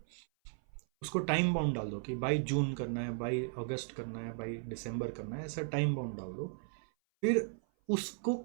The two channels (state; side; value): silent; left; 54 dB below the other